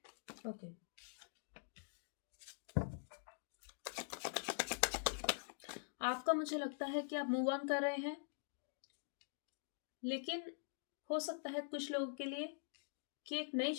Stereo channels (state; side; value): silent; right; digital silence